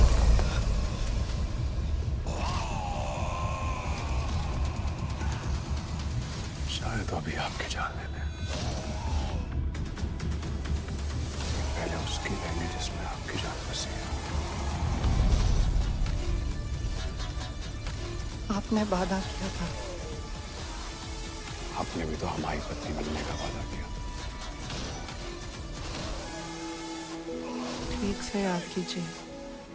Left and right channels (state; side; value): identical; both; correlation 1.00